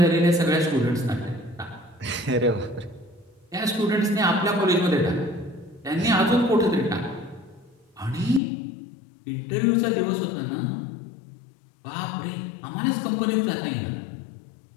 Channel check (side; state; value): right; drops out; at 8.4 s